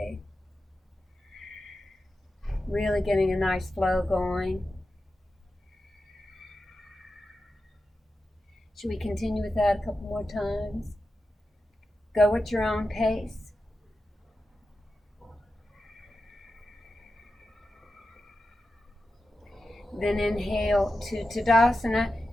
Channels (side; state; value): both; normal; correlation 0.91